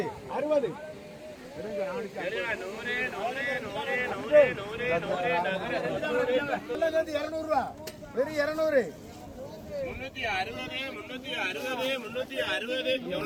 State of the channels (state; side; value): identical; both; correlation 1.00